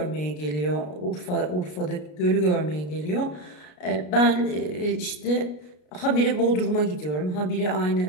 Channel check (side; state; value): right; late; 33 ms